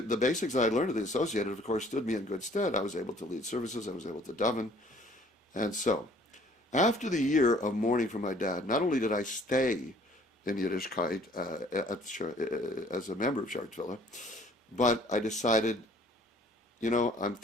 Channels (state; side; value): normal; both; correlation 0.56